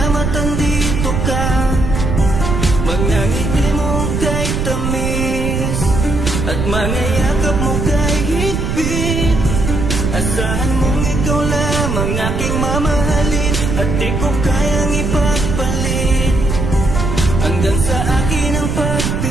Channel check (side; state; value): right; noise; rumble, 1 dB below the sound